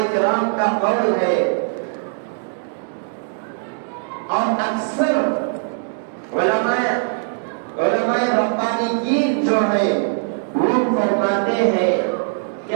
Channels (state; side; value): silent; left; 65 dB below the other